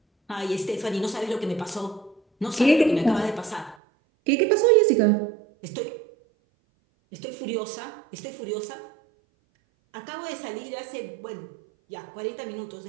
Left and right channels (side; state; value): left; drops out; at 3.8 s